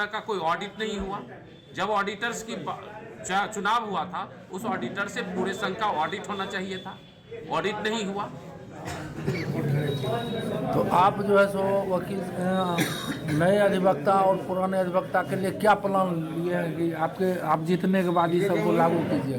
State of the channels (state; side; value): identical; both; correlation 1.00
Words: का कोई ऑडिट नहीं हुआ। जब ऑडिटर्स की चुनाव हुआ था उस ऑडिटर से पूरे संघ का ऑडिट होना चाहिए था, ऑडिट नहीं हुआ। तो आप जो है सो वकील नए अधिवक्ता और पुराने अधिवक्ता के लिए क्या प्लान लिए हैं कि आप जीतने के बाद ये सबको लागू कीजिए?